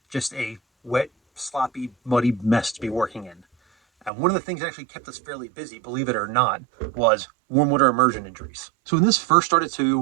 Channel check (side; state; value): left; drops out; at 4.1 s